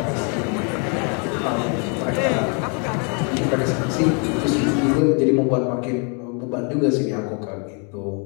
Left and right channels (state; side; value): quieter; right; 36.0 dB